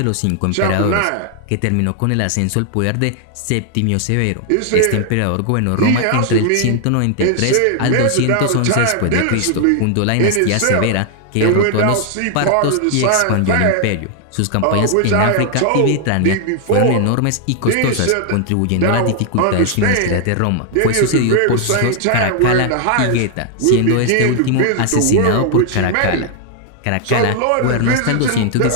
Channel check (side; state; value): both; different; correlation 0.00